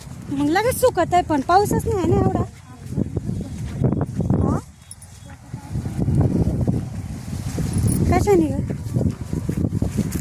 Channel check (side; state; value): both; identical; correlation 1.00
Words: मग लगेच सुकत आहे. पण पाऊसच नाही आहे ना एवढा. कशाने ग